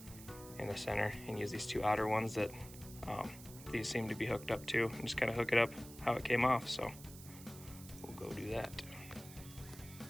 in the center and use these 2 outer ones that these seem to be hooked up to, and just kind of hook it up how it came off. So we'll go do that.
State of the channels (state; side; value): noise; right; hiss, 16 dB below the sound